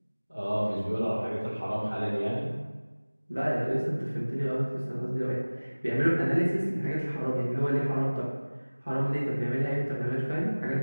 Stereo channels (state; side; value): inverted; both; correlation -1.00